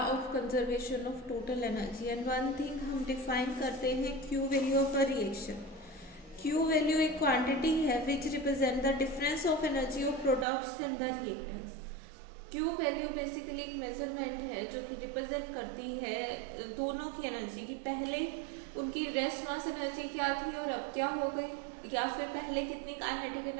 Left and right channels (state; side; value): drops out; left; at 10.5 s